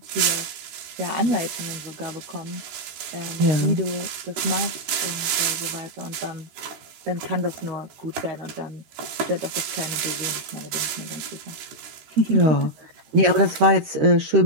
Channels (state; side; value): late; left; 13 ms